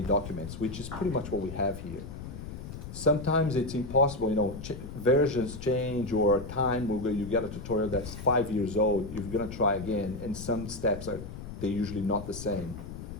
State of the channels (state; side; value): noise; left; rumble, 10 dB below the sound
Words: documents, which is pretty much what we have here. Sometimes it's impossible, versions change or time, you get a tutorial that's 5 years old, you're gonna try again, and some steps they're usually not the same.